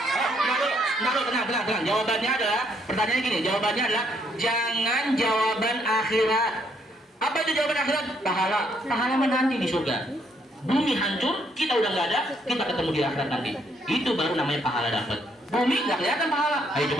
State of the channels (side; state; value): both; normal; correlation 0.71